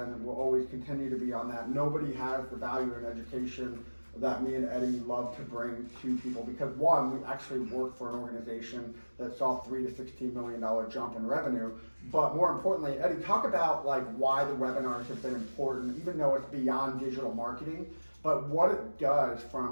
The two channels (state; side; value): inverted; both; correlation -1.00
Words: and we'll always continue to be on that. Nobody has the value in education that me and Eddie love to bring to people, because one, we actually work for an organization that saw $3 to $16 million jump in revenue. But more importantly, Eddie, talk about like why the webinars have been important, even though it's beyond digital marketing, but what it does